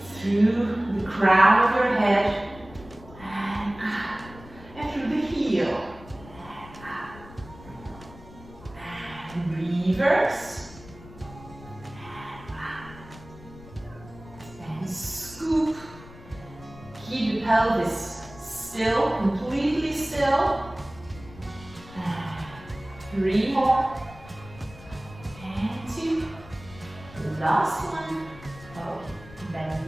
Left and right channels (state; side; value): noise; left; rumble, 19 dB below the sound